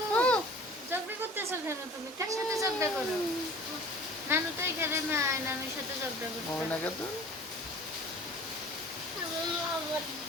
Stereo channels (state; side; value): normal; both; correlation 0.45